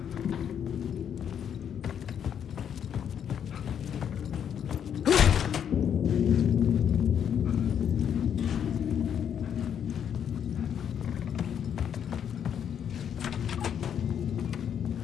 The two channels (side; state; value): right; quieter; 8.6 dB